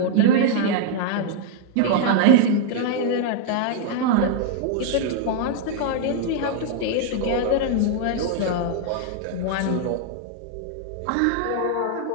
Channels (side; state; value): both; different; correlation -0.01